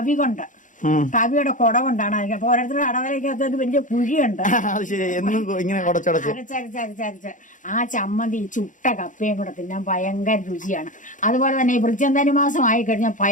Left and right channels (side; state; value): right; late; 0.37 ms